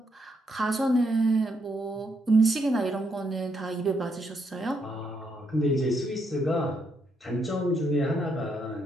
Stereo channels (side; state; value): both; normal; correlation 0.76